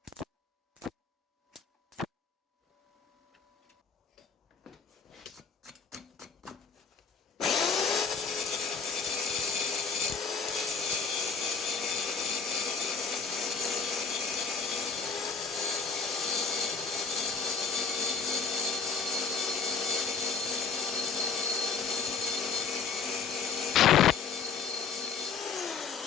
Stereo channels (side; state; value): right; quieter; 5.6 dB